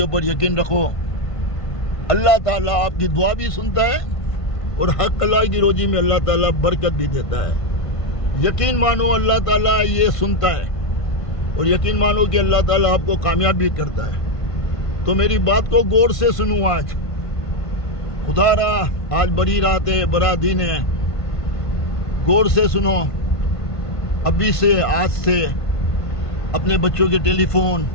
ऊपर यकीन रखो, अल्लाह ताला आपकी दुआ भी सुनता है और हक हलाल की रोजी में अल्लाह ताला बरकत भी देता है। यकीन मानो अल्लाह ताला ये सुनता है और यकीन मानो कि अल्लाह ताला आपको कामयाब भी करता है। तो मेरी बात को गौर से सुनो। आज खुदारा आज बड़ी रात है, बड़ा दिन है, गौर से सुनो। अभी से, आज से अपने बच्चों के टेलीफोन,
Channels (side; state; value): right; late; 1.5 ms